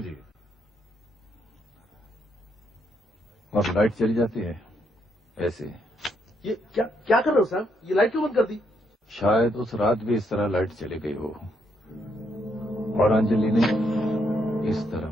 और लाइट चली जाती है ऐसे? ये क्या कर रहे हो साहब? ये लाइट क्यों बंद कर दी? शायद उस रात भी इस तरह लाइट चली गई हो और अंजलि ने इस तरह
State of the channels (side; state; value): both; normal; correlation 0.75